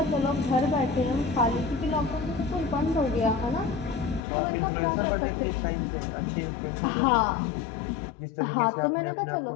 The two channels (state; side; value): drops out; right; at 4.2 s